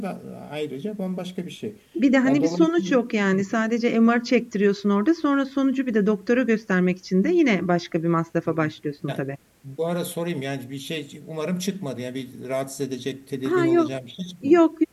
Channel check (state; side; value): identical; both; correlation 1.00